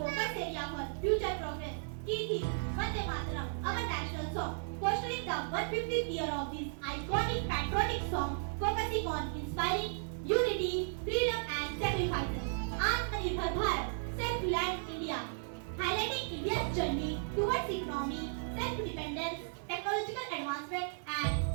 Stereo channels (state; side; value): silent; left; 54 dB below the other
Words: area for future progress. Key theme Vande Mataram, our national song, fostering the 150th year of this iconic patriotic song, focusing on inspiring unity, freedom, and sacrifices. Atmanirbhar Bharat, self-reliant India, highlighting India's journey towards economy, self-dependence, technological advancement,